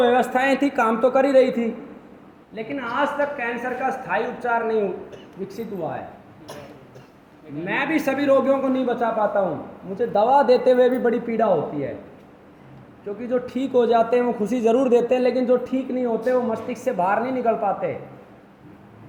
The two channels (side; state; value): both; identical; correlation 1.00